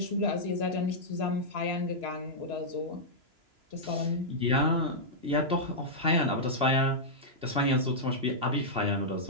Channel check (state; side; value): late; left; 2.9 ms